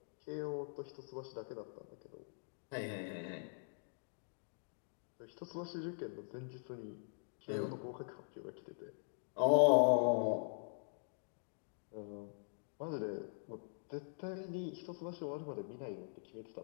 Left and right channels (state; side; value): silent; right; digital silence